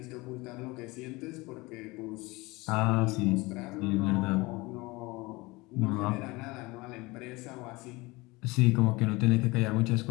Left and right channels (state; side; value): quieter; right; 23.0 dB